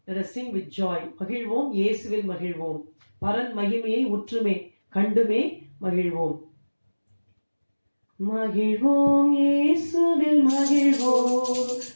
Let us sing with joy. மகிழ்வோம் இயேசுவில் மகிழ்வோம். பரன் மகிமையை உற்றுமே கண்டுமே மகிழ்வோம். மகிழ்வோம் இயேசுவில் மகிழ்வோம்,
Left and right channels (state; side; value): inverted; both; correlation -1.00